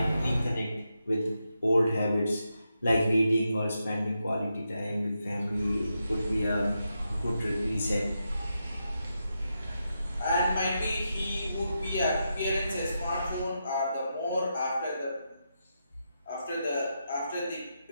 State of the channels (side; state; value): both; inverted; correlation -0.86